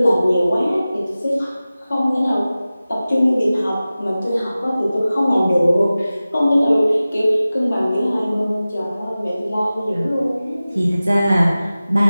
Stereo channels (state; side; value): inverted; both; correlation -0.96